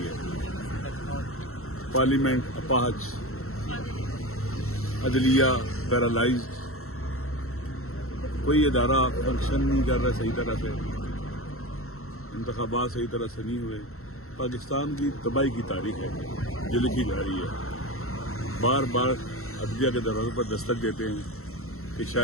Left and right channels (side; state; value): right; late; 0.63 ms